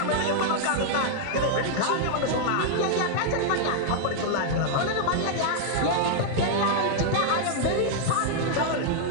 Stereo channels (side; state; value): both; different; correlation -0.01